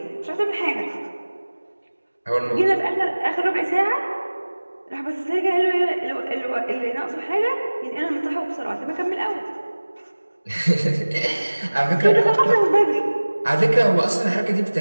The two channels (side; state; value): both; inverted; correlation -1.00